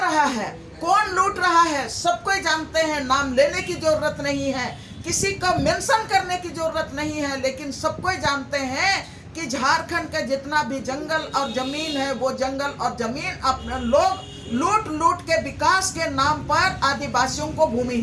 रहा है। कौन लूट रहा है सबको जानते हैं, नाम लेने की जरूरत नहीं है, किसी को मेंशन करने की जरूरत नहीं है, लेकिन सबको जानते हैं कि झारखंड का जितना भी जंगल और जमीन है, वो जंगल और जमीन अपने लोग लूट लूट के विकास के नाम पर आदिवासियों को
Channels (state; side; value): identical; both; correlation 1.00